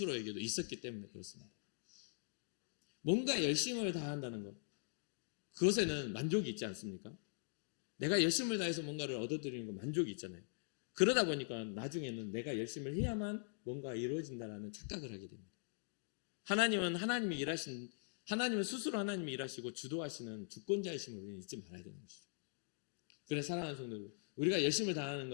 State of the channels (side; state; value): right; silent; digital silence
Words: 있었기 때문에 그렇습니다. 뭔가 열심을 다한다는 것, 그것에는 만족이 있지 않습니까? 내가 열심을 다해서 뭔가를 얻어들이는 건 만족이 있잖아요. 그러다 보니까 나중에는 내가 열심을 해야만 뭔가 이루어진다는 착각을 하게 됩니다. 하나님은 하나님은 스스로 하나님이 일하시고 주도하시는 주권자이심을 우리는 잊지 말아야 되는 것이죠. 그래서 사랑하는 성도들, 우리가 열심을 다하는